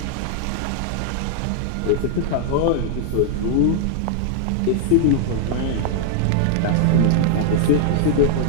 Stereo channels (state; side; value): different; both; correlation 0.00